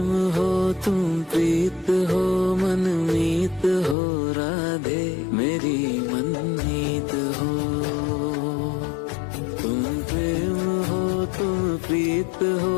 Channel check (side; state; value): right; drops out; at 4.0 s